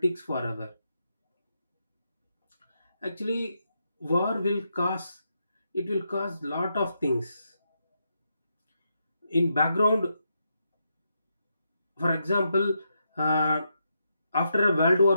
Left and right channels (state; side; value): inverted; both; correlation -0.82